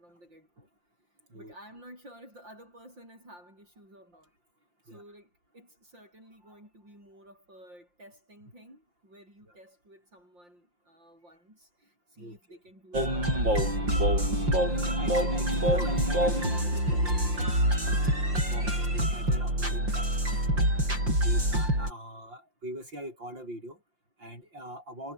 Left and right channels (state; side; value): late; left; 5.7 ms